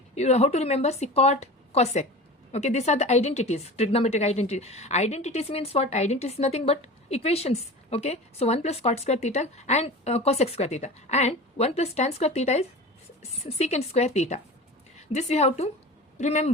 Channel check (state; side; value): normal; both; correlation 0.34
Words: you know how to remember. See, cot, cosec. Okay, these are the identities, trigonometric identity. Identities means what? Identities is nothing but equations. Okay, so 1 plus cot square theta and cosec square theta, and 1 plus tan square theta is secant square theta. This you have to